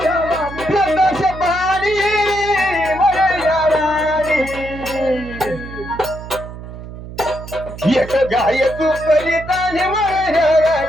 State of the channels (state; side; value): noise; right; hum, 12 dB below the sound